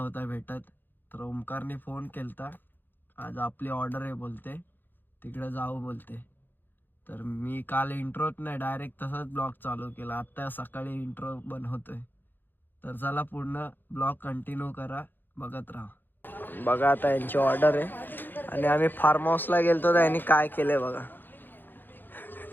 भेटत. तर ओमकारने फोन केलता, आज आपली ऑर्डर आहे बोलते, तिकडे जाऊ बोलते. तर मी काल इंट्रोच नाही, डायरेक्ट तसाच ब्लॉग चालू केला. आत्ता सकाळी इंट्रो बनवतोय. तर चला पूर्ण ब्लॉग कंटिन्यू करा, बघत राहा. बघा आता यांची ऑर्डर आहे आणि आम्ही फार्म हाऊसला गेलतो. तर यांनी काय केलंय बघा.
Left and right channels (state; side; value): late; right; 0.092 ms